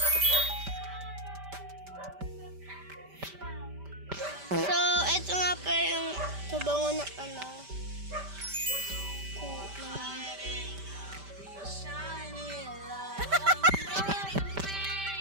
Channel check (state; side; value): late; left; 5.1 ms